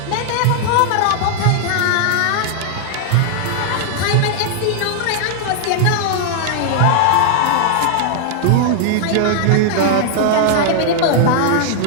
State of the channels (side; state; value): both; different; correlation 0.00